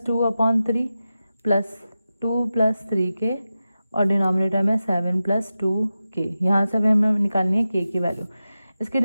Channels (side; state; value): both; inverted; correlation -0.92